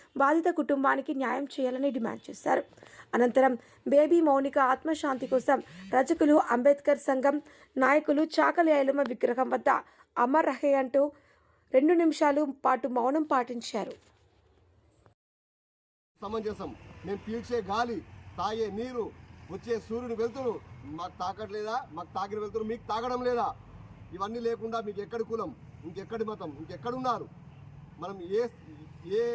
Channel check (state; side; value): identical; both; correlation 1.00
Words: బాధిత కుటుంబానికి న్యాయం చేయాలని డిమాండ్ చేశారు. అనంతరం బేబీ మౌనిక ఆత్మశాంతి కోసం రజకులు అంబేద్కర్ సంఘం నాయకులు చాకలి ఐలమ్మ విగ్రహం వద్ద అమర్ రహే అంటూ 2 నిమిషాలు పాటు మౌనం పాటించారు. సమంజసం. మేము పీల్చే గాలి, తాగే నీరు, వచ్చే సూర్యుని వెళ్తురు మాకు తాకట్లేదా? మాకు తాకిన వెళ్తురు మీకు తాగడం లేదా? ఇవన్నీ లేకుండా మీకు ఎక్కడి కులం, ఇంకెక్కడి మతం, ఇంకెక్కడున్నారు? మనం ఏ